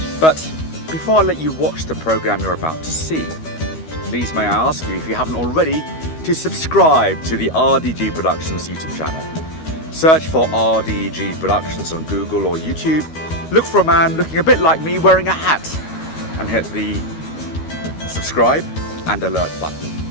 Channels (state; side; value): late; right; 13 ms